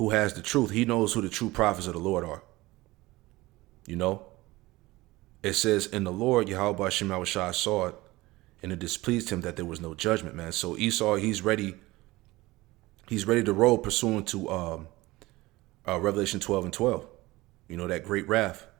has the truth. He knows who the true prophets of the Lord are. It says, in the Lord, Yahweh Hashem Yahushua saw it, and it displeased him that there was no judgment, man. So Esau, he's ready to roll pursuant to Revelation 12 and 12. That great wrath.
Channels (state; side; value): quieter; left; 19.9 dB